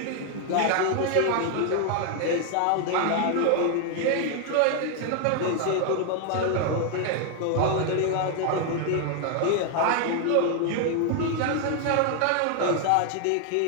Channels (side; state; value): both; different; correlation 0.00